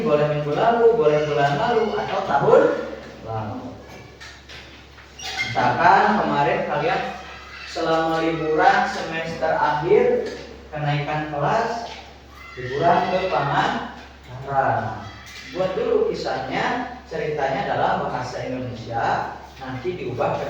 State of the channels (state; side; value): identical; both; correlation 1.00